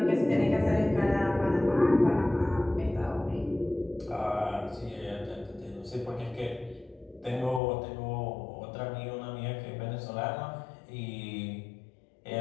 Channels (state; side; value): drops out; right; at 7.6 s